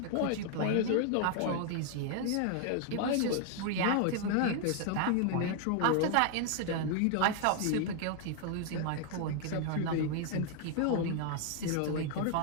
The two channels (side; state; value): both; different; correlation 0.00